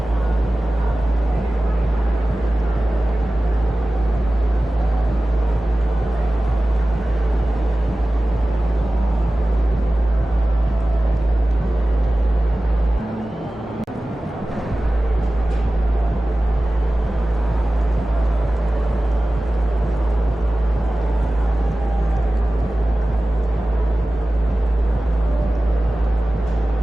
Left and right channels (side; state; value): both; normal; correlation 0.96